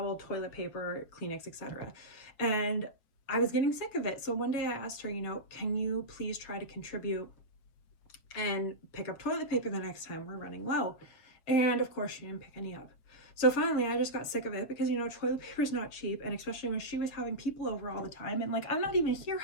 toilet paper, Kleenex, etc. And I was getting sick of it. So one day I asked her, you know, can you please try to contribute and pick up toilet paper the next time we're running low? And of course she didn't pick any up. So finally I just got sick of it because, you know, toilet paper is not cheap. And especially when she was having people over all the time, and like, I'm not even here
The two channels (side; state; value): right; late; 7.0 ms